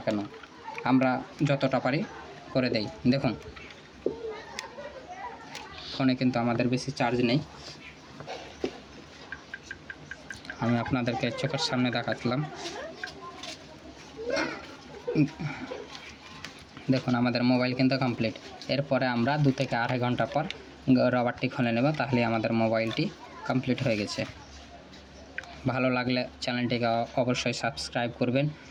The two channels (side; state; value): both; identical; correlation 1.00